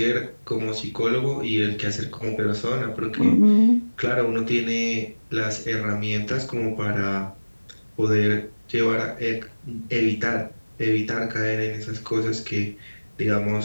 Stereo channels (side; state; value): both; inverted; correlation -1.00